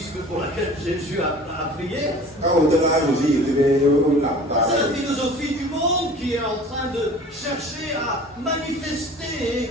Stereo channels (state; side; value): normal; both; correlation 0.44